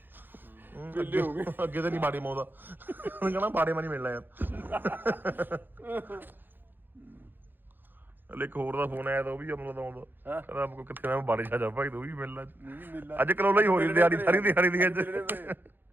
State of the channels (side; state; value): left; late; 0.094 ms